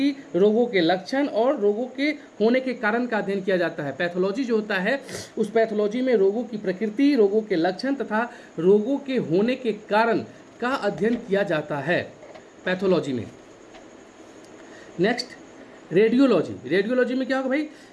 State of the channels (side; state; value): both; identical; correlation 1.00